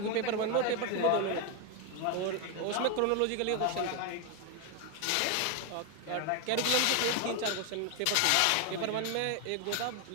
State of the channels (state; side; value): different; both; correlation 0.01